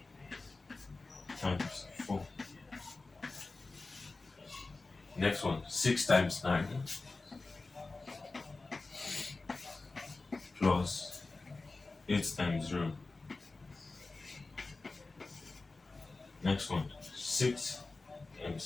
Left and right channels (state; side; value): quieter; right; 3.5 dB